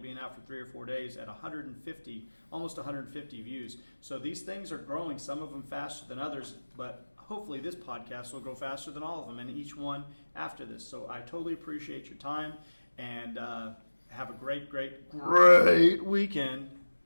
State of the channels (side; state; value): both; inverted; correlation -1.00